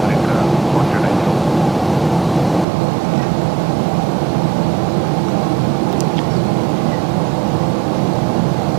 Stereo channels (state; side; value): drops out; left; at 2.7 s